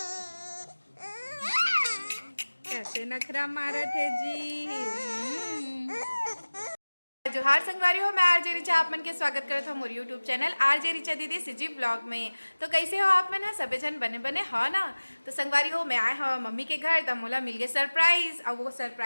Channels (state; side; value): inverted; both; correlation -1.00